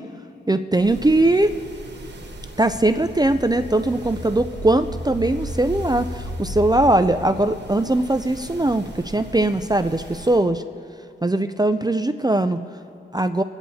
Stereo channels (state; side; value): normal; both; correlation 0.78